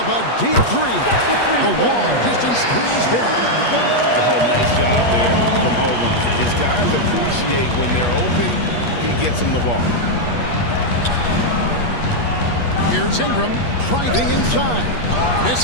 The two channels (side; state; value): right; late; 8.3 ms